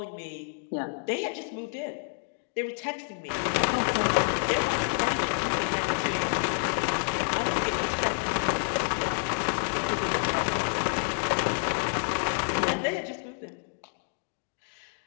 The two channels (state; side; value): silent; right; digital silence